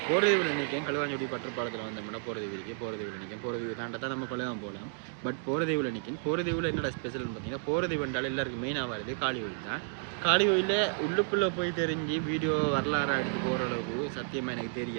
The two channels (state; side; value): silent; left; digital silence